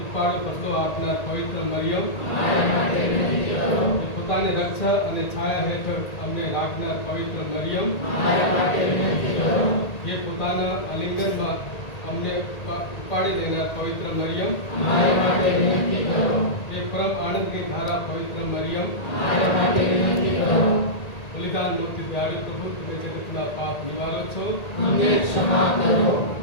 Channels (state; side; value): late; right; 1.9 ms